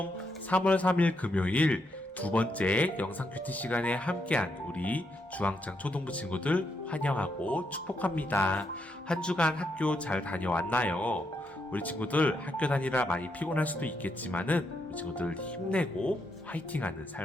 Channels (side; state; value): both; normal; correlation 0.79